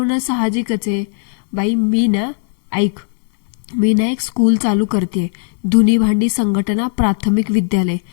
साहजिकच आहे. बाई, मी ना एक स्कूल चालू करते, धुनी भांडी संघटना प्राथमिक विद्यालय.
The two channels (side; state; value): right; silent; digital silence